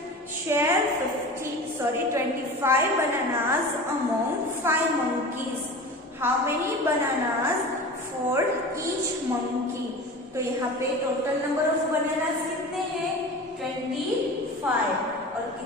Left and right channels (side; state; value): both; normal; correlation 0.34